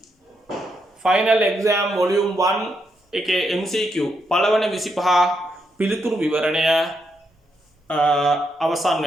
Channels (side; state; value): both; normal; correlation 0.80